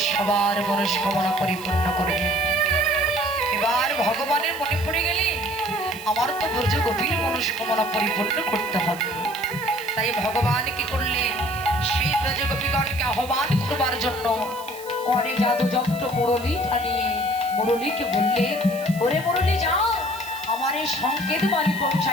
সবার মনস্কামনা পরিপূর্ণ করবে। এবার ভগবানের মনে পড়ে গেলে আমার তো ব্রজ গোপীর মনস্কামনা পরিপূর্ণ করতে হবে। তাই ভগবান কি করলেন, সেই ব্রজ গোপীগণকে আহ্বান করবার জন্য করে জাদু যন্ত্র মুরলী টানিয়ে মুরলীকে বললেন, ওরে মুরলী যাও, আমার এই সংকেত বাণী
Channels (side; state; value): right; noise; hiss, 17 dB below the sound